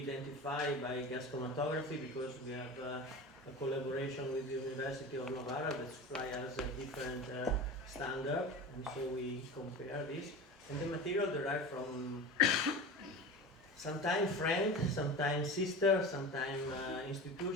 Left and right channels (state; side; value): normal; both; correlation 0.31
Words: identify by gas chromatography, because we have a collaboration with the University of Novara that supply us a different standard, and so we compare this. And the material derived from sometimes friend, sometimes sister, sometimes